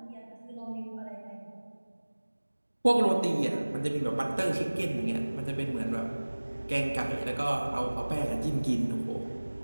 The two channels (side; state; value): both; inverted; correlation -1.00